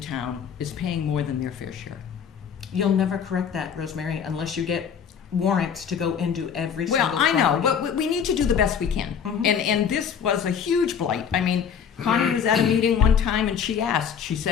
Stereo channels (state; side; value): quieter; right; 7.4 dB